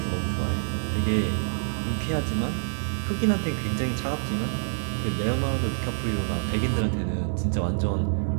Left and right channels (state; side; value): silent; left; digital silence